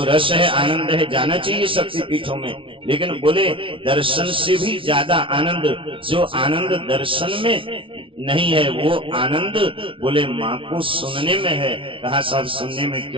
रस है, आनंद है, जाना चाहिए शक्ति पीठों में, लेकिन बोले दर्शन से भी ज्यादा आनंद, जो आनंद दर्शन में नहीं है, वो आनंद बोले माँ को सुनने में है। कहा साहब सुनने में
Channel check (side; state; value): left; late; 0.25 ms